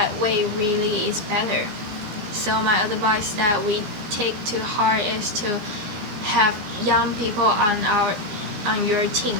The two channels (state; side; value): late; left; 15 ms